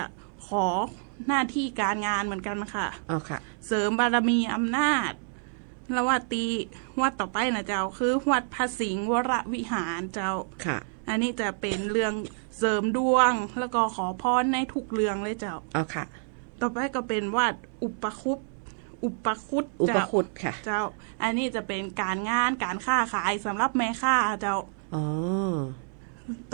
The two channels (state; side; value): silent; left; 59 dB below the other